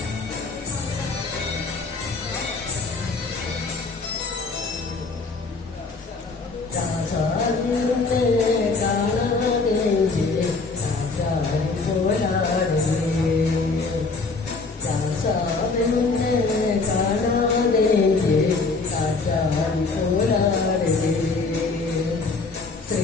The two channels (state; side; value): quieter; right; 4.0 dB